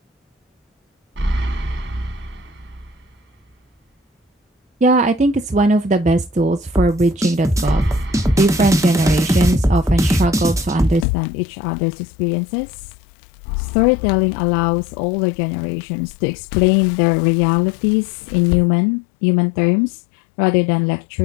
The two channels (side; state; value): right; drops out; at 11.1 s